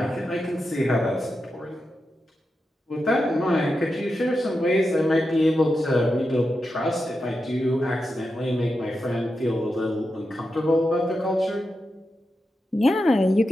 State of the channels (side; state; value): both; normal; correlation 0.89